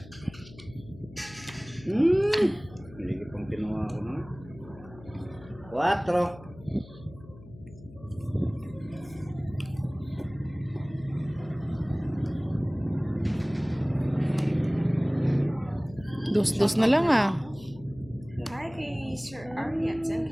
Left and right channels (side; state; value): left; noise; hum, 19 dB below the sound